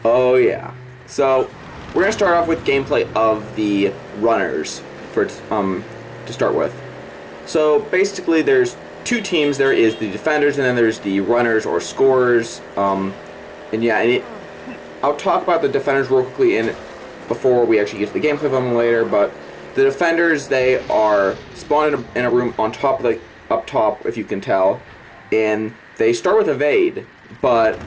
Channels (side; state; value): both; identical; correlation 1.00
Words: Oh yeah. So, we're going to start off with gameplay of the runners to start with. So, basically there's two teams. There is the defenders and then there's the runners or scorers. I'll talk about the defenders real quickly before we actually get to the gameplay of them later, but the defenders, they are spawned in a room on top, like up top, if you can tell, and they start with evade, but